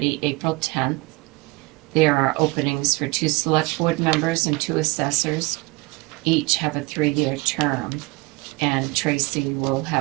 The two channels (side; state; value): left; quieter; 25.4 dB